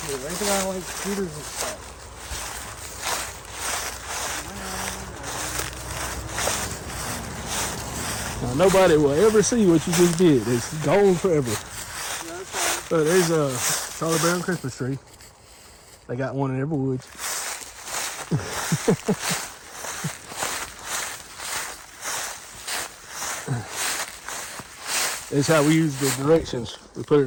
kid. I think I like scooters and stuff. Now, nobody will ever see what you just did. It's gone forever. Yeah, that's fine. So there's a Charlie Brown Christmas tree. They got one in every woods. That's how we use the directions. We put it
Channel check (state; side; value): identical; both; correlation 1.00